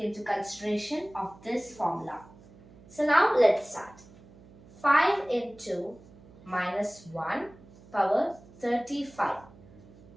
consideration of this formula. So now let's start. 5 into minus 1 power 35.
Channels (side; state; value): right; noise; hum, 23 dB below the sound